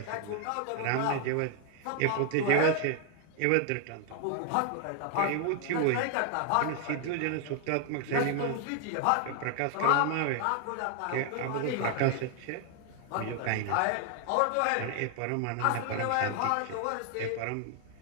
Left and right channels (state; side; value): different; both; correlation 0.00